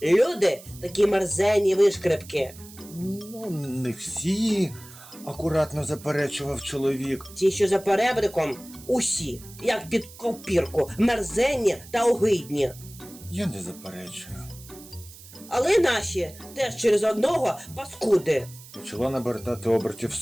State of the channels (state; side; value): noise; right; hiss, 19 dB below the sound